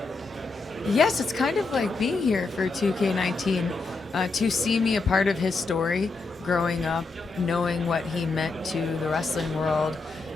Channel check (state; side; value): quieter; right; 3.8 dB